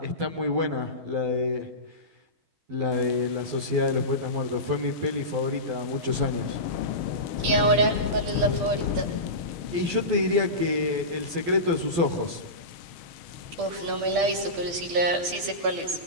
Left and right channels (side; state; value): left; late; 12 ms